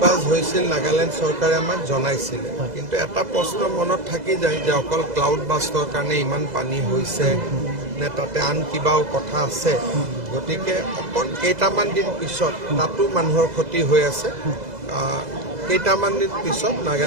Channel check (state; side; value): late; left; 2.0 ms